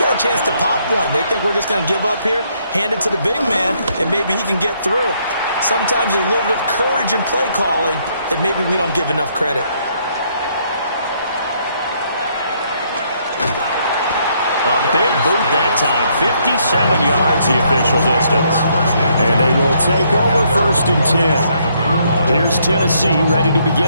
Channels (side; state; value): both; inverted; correlation -0.70